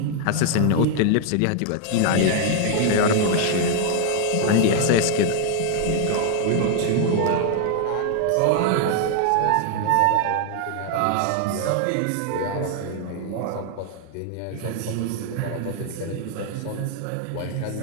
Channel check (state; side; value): different; both; correlation 0.00